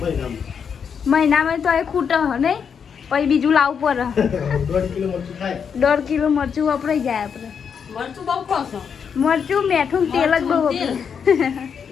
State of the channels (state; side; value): quieter; right; 6.9 dB